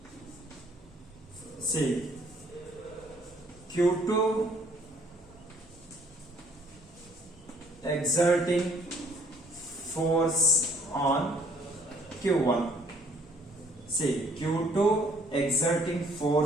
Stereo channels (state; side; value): normal; both; correlation 0.62